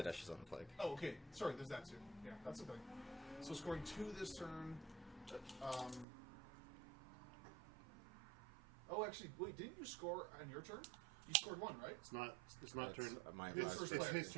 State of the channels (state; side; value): drops out; left; at 6.1 s